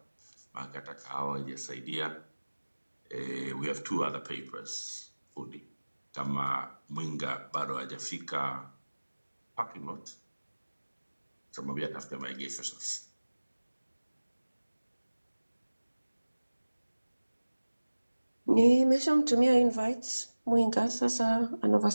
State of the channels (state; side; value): inverted; both; correlation -1.00